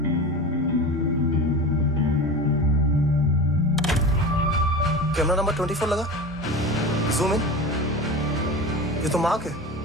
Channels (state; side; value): normal; both; correlation 0.30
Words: Camera number 24 लगा, जूम इन। ये तो मार्क है।